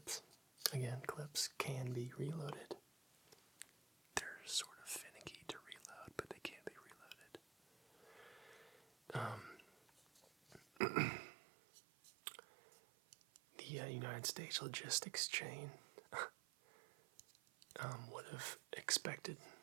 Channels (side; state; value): left; drops out; at 10.8 s